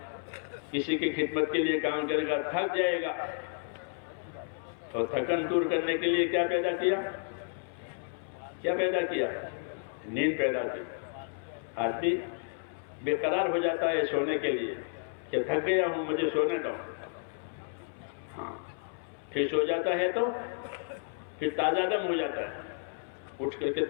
کسی کی خدمت کے لیے کام کرے گا، تھک جائے گا، تو تھکن دور کرنے کے لیے کیا پیدا کیا؟ کیا پیدا کیا؟ نیند پیدا کی. آدمی بے قرار ہو جاتا ہے سونے کے لیے کہ تھک گیا ہوں مجھے سونے دو. ہاں پھر سو جاتا ہے تو پھر تازہ دم ہو جاتا ہے, اٹھ کر کے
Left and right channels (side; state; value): right; silent; 57 dB below the other